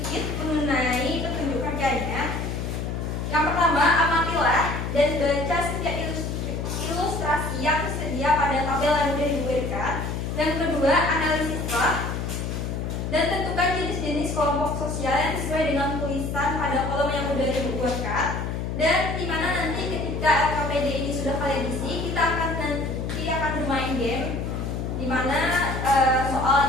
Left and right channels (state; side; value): noise; left; hum, 3 dB below the sound